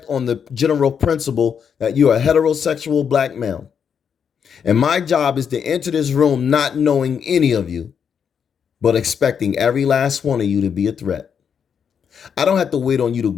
on the general principle that you're a heterosexual black male. And my job is to enter this room not knowing any of you, but expecting every last one of you to be a threat. I don't have to wait on you to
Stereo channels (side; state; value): right; quieter; 7.3 dB